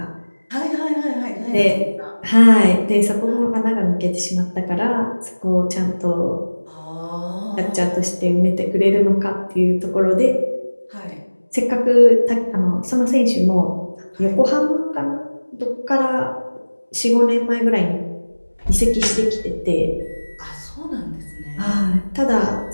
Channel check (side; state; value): both; inverted; correlation -1.00